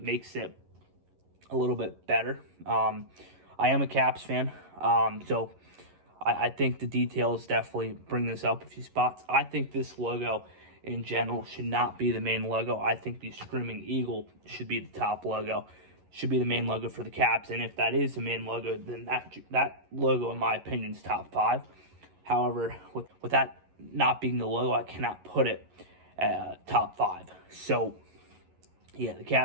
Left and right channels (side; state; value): left; late; 11 ms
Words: it a little bit better. I am a Caps fan, so I think the details definitely bring this up a few spots. I think this logo in general should not be the main logo. I think the Screaming Eagle should be the top logo, should be the main logo for the Caps. And if that is the main logo, then that logo, in my opinion, is top 5. However, with that not being the logo, I cannot put it top 5. So, yeah, the